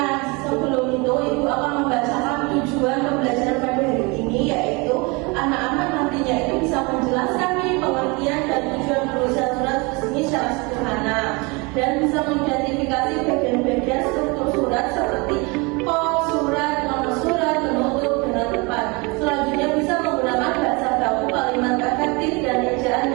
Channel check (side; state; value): left; quieter; 27.9 dB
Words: sebelum itu Ibu akan membacakan tujuan pembelajaran pada hari ini, yaitu anak-anak nantinya itu bisa menjelaskan nih pengertian dan tujuan penulisan surat resmi secara sederhana dan bisa mengidentifikasi bagian-bagian struktur surat seperti kop, surat, nomor surat, penutup, dengan tepat. Selanjutnya bisa menggunakan bahasa baku, kalimat efektif, dan ejaan